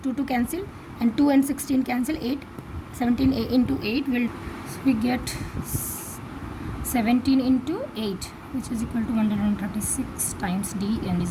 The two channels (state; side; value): identical; both; correlation 1.00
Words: 2 cancel, and 2 and 16 cancel, 8. 17a into 8 will, so we get 17 into 8, which is equal to 136 times d and